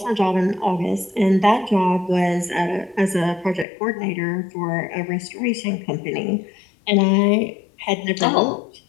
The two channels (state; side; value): drops out; right; at 3.7 s